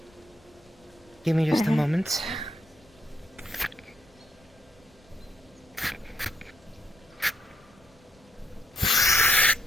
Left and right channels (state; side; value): normal; both; correlation 0.81